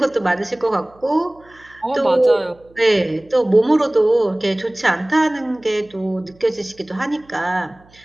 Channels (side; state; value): right; noise; hum, 29 dB below the sound